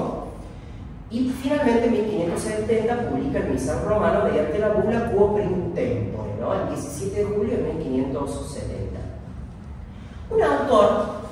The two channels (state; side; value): identical; both; correlation 1.00